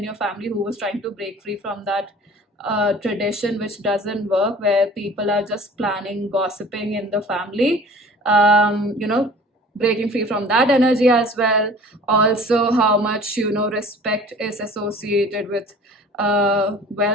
your family who was trying to break free from that tradition, which doesn't work, where people are just planning, gossiping in the family. Breaking free from that energy as well. Also, how much respect is associated with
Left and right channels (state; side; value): normal; both; correlation 0.46